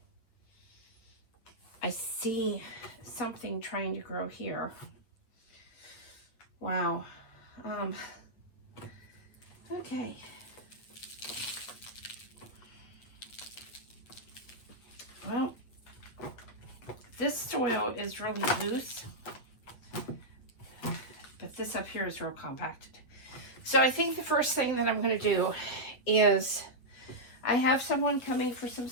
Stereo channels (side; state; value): right; late; 8.0 ms